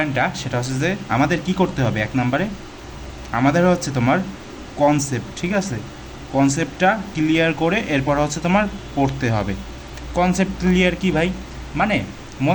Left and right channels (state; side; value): identical; both; correlation 1.00